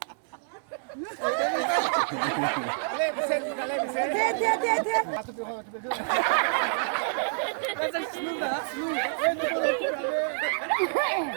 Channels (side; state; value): left; silent; 58 dB below the other